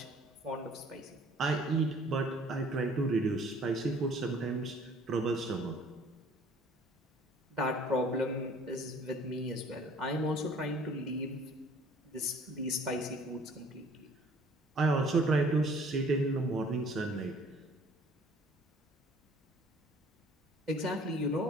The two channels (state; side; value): normal; both; correlation 0.54